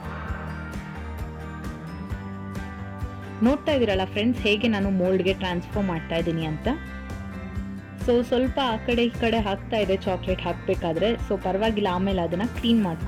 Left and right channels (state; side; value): identical; both; correlation 1.00